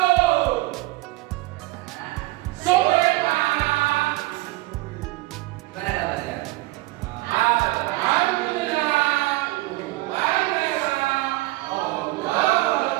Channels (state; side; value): quieter; left; 20.1 dB